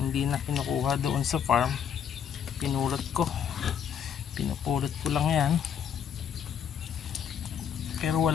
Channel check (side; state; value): right; quieter; 8.3 dB